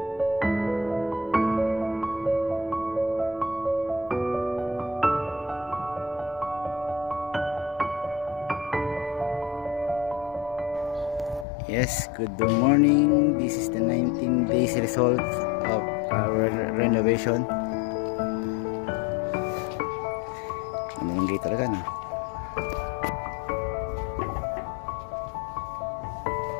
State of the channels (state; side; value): drops out; right; at 11.5 s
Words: Yes, good morning. This is the 19 days result of our renovation. Ano yung gate talaga na?